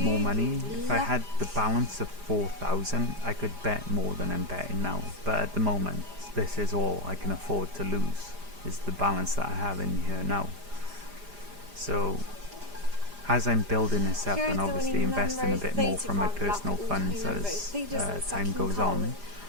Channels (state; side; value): late; left; 5.0 ms